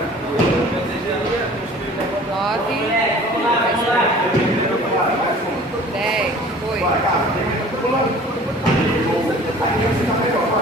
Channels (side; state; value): both; normal; correlation 0.47